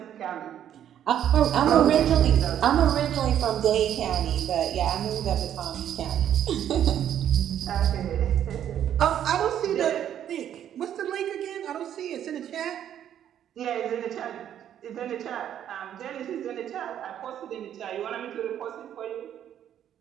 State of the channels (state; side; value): quieter; left; 10.3 dB